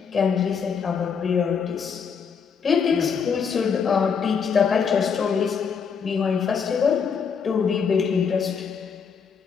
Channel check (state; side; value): quieter; right; 6.4 dB